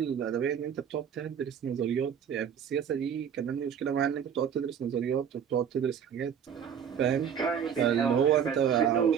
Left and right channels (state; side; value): quieter; left; 8.1 dB